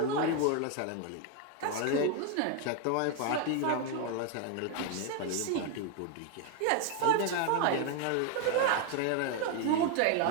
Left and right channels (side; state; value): both; different; correlation 0.01